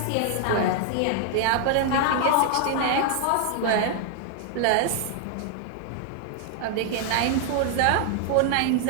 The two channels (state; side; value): different; both; correlation 0.00